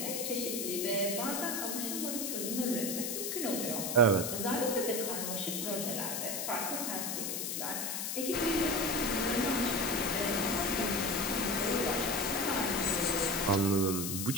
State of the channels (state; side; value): noise; left; hiss, 2 dB below the sound